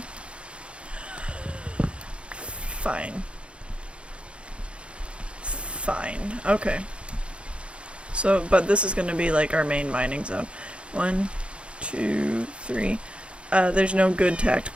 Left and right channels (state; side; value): late; left; 0.058 ms